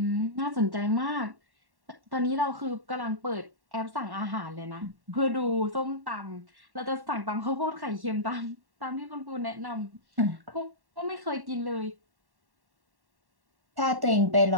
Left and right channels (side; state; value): left; late; 1.1 ms